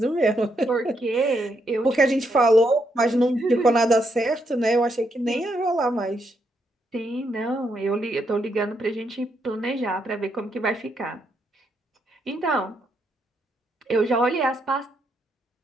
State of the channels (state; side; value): normal; both; correlation 0.78